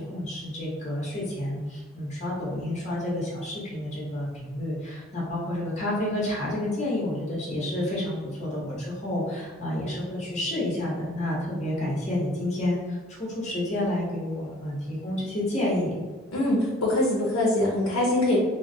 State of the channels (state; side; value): normal; both; correlation 0.54